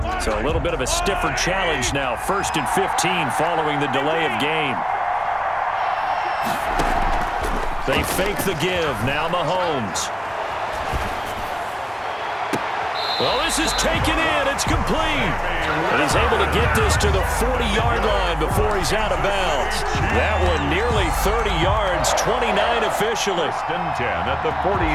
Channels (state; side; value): identical; both; correlation 1.00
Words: So a little bit of a stiffer challenge now. 1st and 15 following the delay of game. They fake the give. Now Mahomes. Well, this is taken in. It's complete. And he's able to get this to the 40-yard line before he's out of bounds. That one nearly 30 yards, 29 officially. 1st and 10 at the